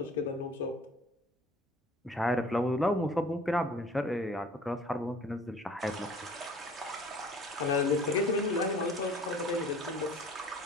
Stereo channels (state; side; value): normal; both; correlation 0.49